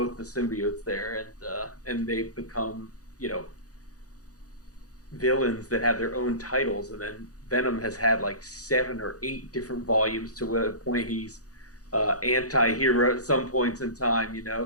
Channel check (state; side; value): late; right; 0.67 ms